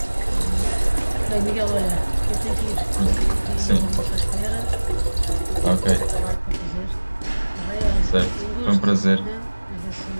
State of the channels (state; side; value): inverted; both; correlation -1.00